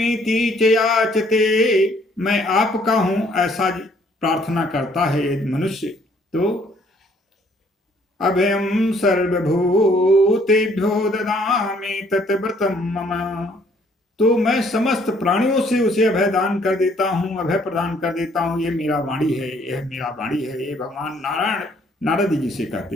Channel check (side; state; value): both; normal; correlation 0.63